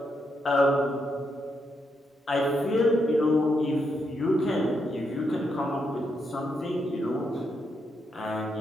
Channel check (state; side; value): normal; both; correlation 0.80